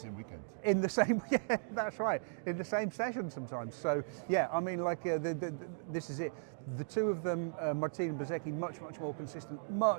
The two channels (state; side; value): silent; left; digital silence